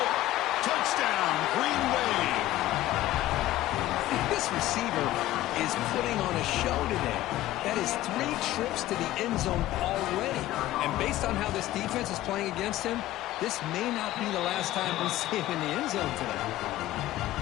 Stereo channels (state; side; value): quieter; right; 15.1 dB